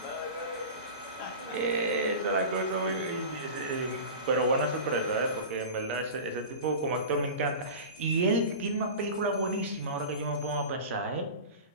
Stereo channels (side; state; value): both; inverted; correlation -0.32